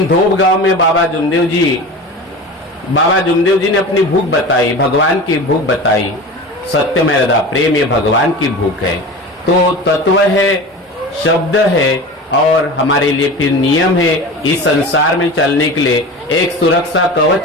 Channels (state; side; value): normal; both; correlation 0.32